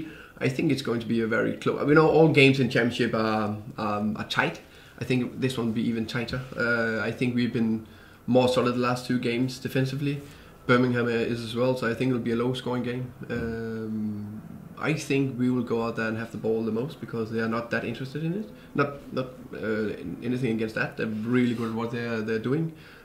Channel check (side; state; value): both; identical; correlation 1.00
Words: I think it's going to be a very close. All games in Championship are tight. I think this one will be even tighter. I think we've been more solid the last 2 games defensively. Birmingham is as well, so I think it'll be a low-scoring game. I think we will go out there and have the ball the most, because they are not that interested in it. Not anything against that. They're really good at what they're doing.